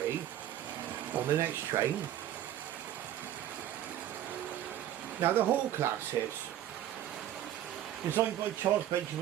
on the next train. Now the Hall classes, designed by Charles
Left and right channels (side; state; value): left; quieter; 11.8 dB